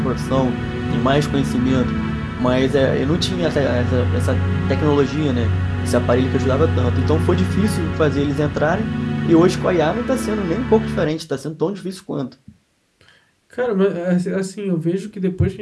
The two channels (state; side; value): identical; both; correlation 1.00